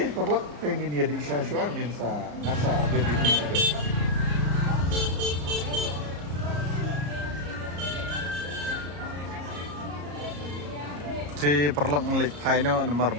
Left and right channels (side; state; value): left; late; 34 ms